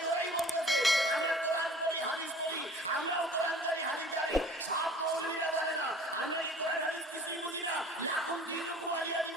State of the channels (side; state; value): both; normal; correlation 0.46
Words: ওরাই বলতেছে আমরা কোরআন পড়ি, হাদিস পড়ি, আমরাও কোরআন জানি, হাদিস জানি, সব মৌলবীরা জানে না। আমরা কি কোরআন হাদিস কিছুই বুঝি না? এখন বিভিন্ন কুমারিয়া